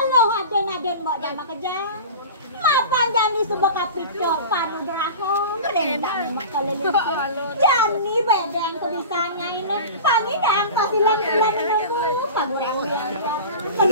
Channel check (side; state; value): both; inverted; correlation -0.34